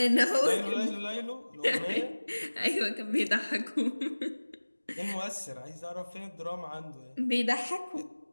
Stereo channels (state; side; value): inverted; both; correlation -1.00